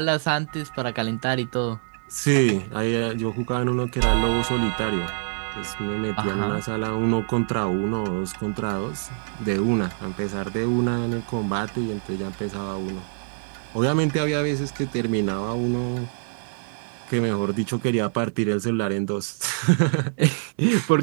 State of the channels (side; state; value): left; silent; digital silence